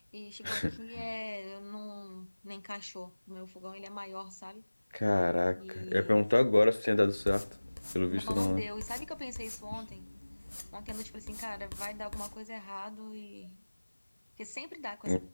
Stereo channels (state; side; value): inverted; both; correlation -1.00